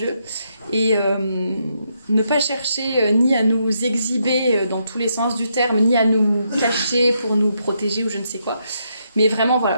et ne pas chercher ni à nous exhiber dans tous les sens du terme, ni à nous cacher pour nous protéger ou je ne sais quoi. Mais vraiment, voilà,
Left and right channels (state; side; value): inverted; both; correlation -0.79